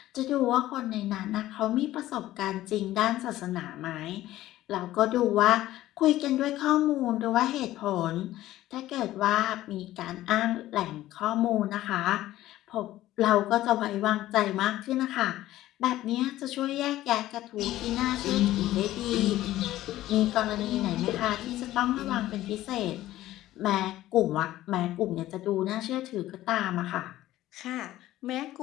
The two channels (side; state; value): right; quieter; 14.9 dB